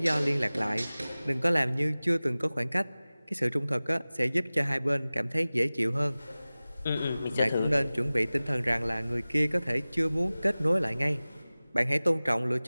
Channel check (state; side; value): inverted; both; correlation -0.98